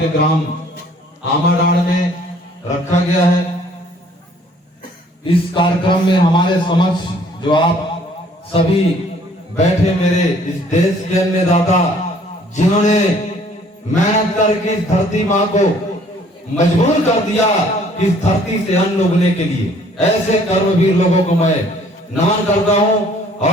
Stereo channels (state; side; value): normal; both; correlation 0.58